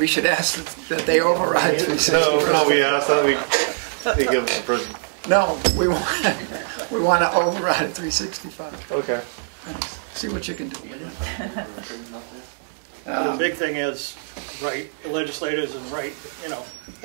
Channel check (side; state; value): left; silent; digital silence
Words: should ask that they override. No, we asked that they give us a prison. No, we want to override 365. Okay. See what you can do. The big thing is, the legislators and